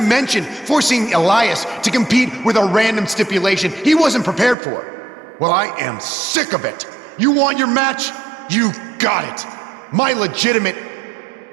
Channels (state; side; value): drops out; left; at 4.5 s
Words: forcing Elias to compete with a random stipulation he wasn't prepared for. Well, I am sick of it. You want your match? You got it. My legitimate,